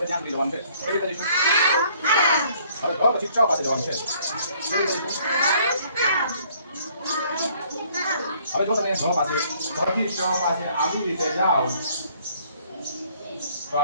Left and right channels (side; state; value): both; inverted; correlation -0.61